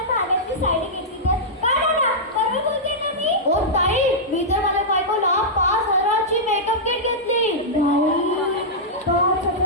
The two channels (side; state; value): both; normal; correlation -0.11